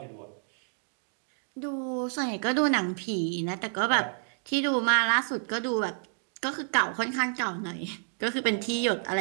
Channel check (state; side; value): silent; left; 58 dB below the other